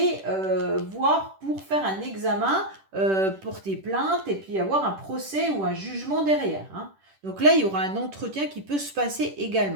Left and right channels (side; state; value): left; late; 10 ms